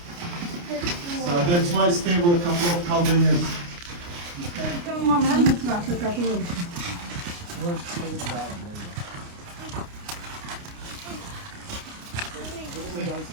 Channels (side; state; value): left; late; 29 ms